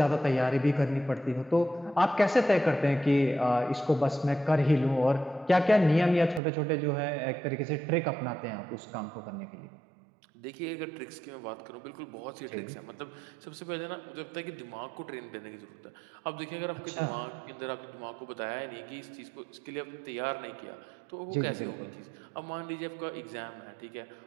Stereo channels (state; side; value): drops out; left; at 6.4 s